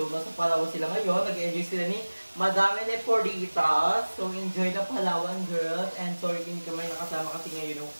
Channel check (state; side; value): inverted; both; correlation -1.00